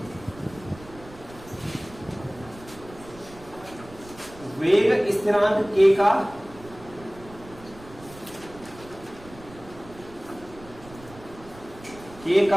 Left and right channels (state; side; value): noise; right; rumble, 19 dB below the sound